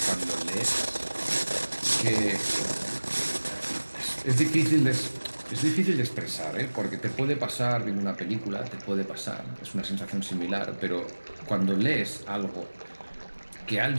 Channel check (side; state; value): both; inverted; correlation -1.00